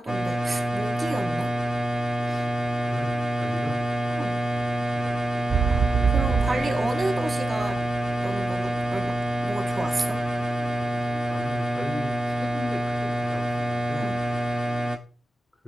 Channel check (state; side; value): normal; both; correlation 0.92